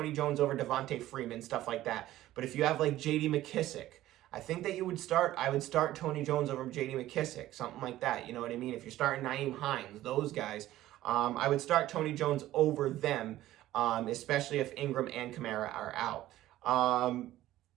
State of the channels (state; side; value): quieter; left; 14.7 dB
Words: Jones over Devontae Freeman, stuff like that. But if you have like J.D. McKissick, I think that I would start Tony Jones over J.D. McKissick, something like that. You know what I mean? If you're starting Nyheim Hines, those guys, I would start Tony Jones over them, especially if Ingram and Kamara are out.